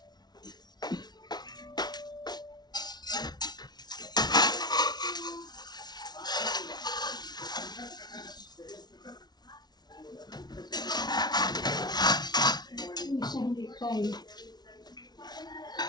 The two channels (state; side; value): late; right; 0.19 ms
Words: Isa hindi tayo.